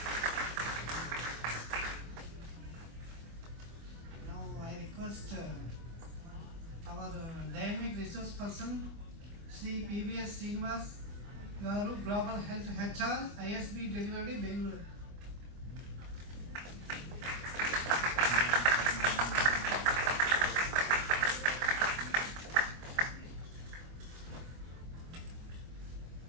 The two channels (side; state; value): left; late; 24 ms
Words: Now I request our dynamic resource person, Sri PVS Srinivas Garu, Global Health HR, ISB Delivery, Bangalore.